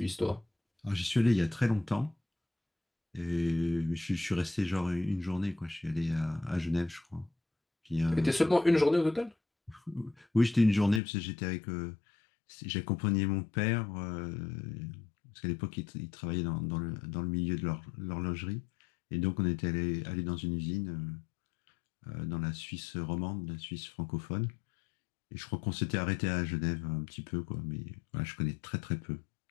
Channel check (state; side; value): drops out; right; at 11.0 s